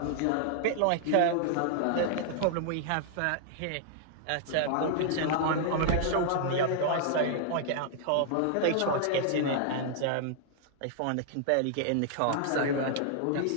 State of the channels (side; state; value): both; different; correlation -0.01